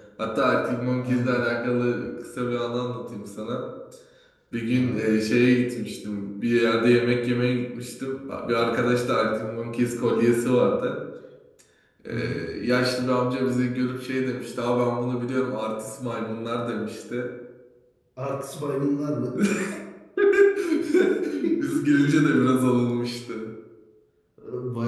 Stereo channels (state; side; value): identical; both; correlation 1.00